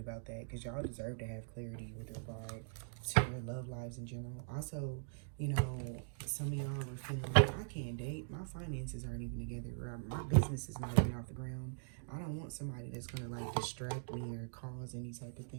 that because y'all deserve to have clarity with regard to your love lives in general. Also, you know, some of y'all are feeling like, I can't date. My finances aren't even together. Or my business is not even off the ground. I don't want somebody that's going to like distract me or cause any type of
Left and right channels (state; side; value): silent; left; digital silence